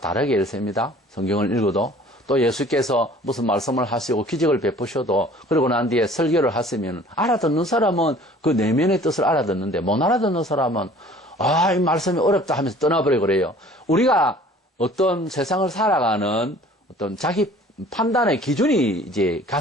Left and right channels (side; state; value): both; normal; correlation 0.50